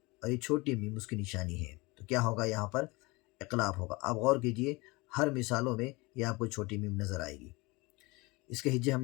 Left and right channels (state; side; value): quieter; right; 24.4 dB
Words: اور یہ چھوٹی میم اس کی نشانی ہے تو کیا ہوگا؟ یہاں پر اقلاب ہوگا۔ آپ غور کیجئے، ہر مثالوں میں یہ آپ کو چھوٹی میم نظر آئے گی۔ اس کے ہجے ہم